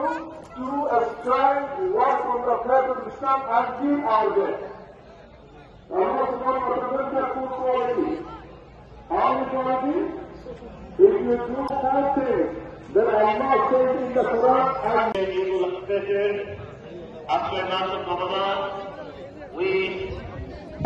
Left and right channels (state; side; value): identical; both; correlation 1.00